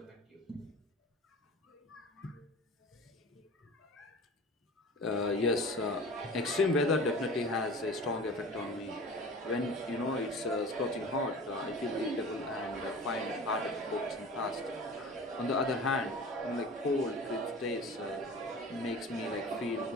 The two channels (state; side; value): normal; both; correlation 0.38